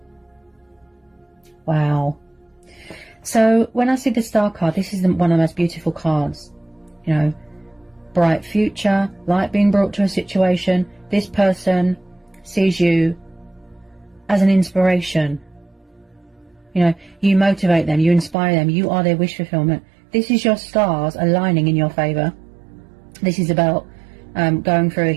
Wow. So when I see the Star card, this is one of the most beautiful cards. You know, bright future, light being brought to a situation. This person sees you as an inspiration. You know, you motivate them, you inspire them, you are their wish fulfillment. This is your stars aligning in your favour. This is about going through a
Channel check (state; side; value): drops out; left; at 18.4 s